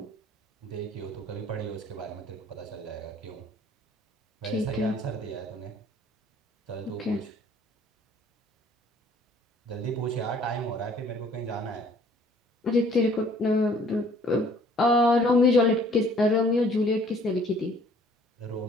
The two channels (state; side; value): normal; both; correlation 0.57